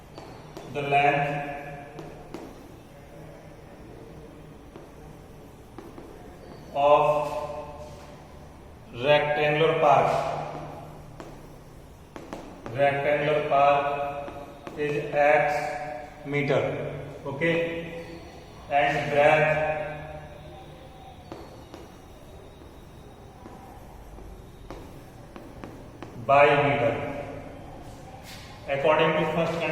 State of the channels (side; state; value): both; identical; correlation 1.00